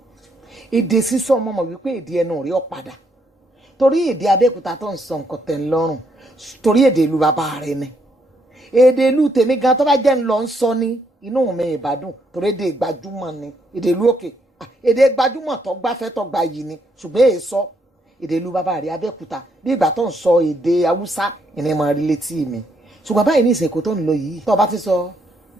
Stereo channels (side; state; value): both; normal; correlation 0.74